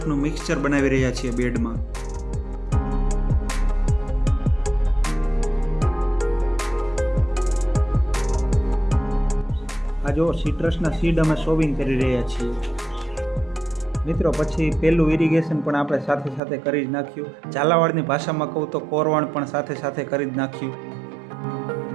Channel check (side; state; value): left; drops out; at 16.4 s